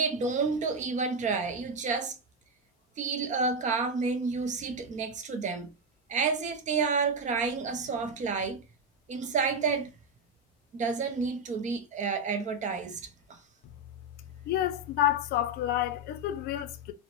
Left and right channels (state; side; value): normal; both; correlation 0.06